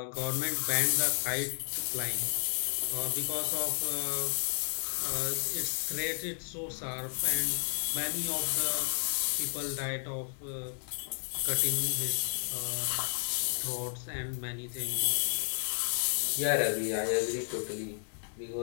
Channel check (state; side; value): silent; right; 56 dB below the other